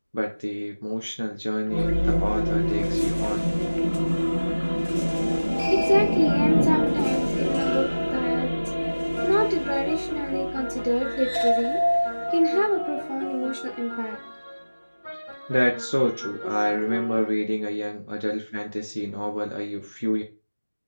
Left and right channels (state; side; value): inverted; both; correlation -1.00